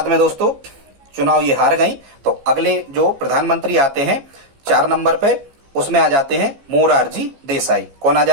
में दोस्तों चुनाव ये हार गई, तो अगले जो प्रधानमंत्री आते हैं 4 नंबर पे, उसमें आ जाते हैं मोरारजी देसाई। कौन आ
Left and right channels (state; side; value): late; left; 15 ms